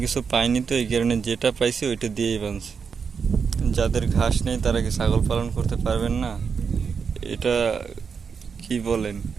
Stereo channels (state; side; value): quieter; left; 6.0 dB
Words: কিছু পাইনি, তো এই কারণে যেটা পাইছে ওইটা দিয়েই বাঁধছে। যাদের ঘাস নেই তারা কি ছাগল পালন করতে পারবেন না? এটা কি বলেন?